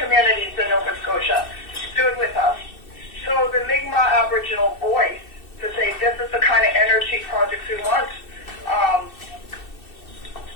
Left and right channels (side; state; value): right; late; 2.6 ms